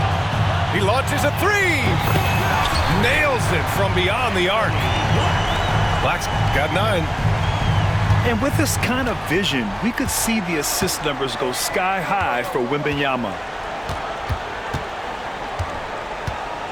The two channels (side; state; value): both; identical; correlation 1.00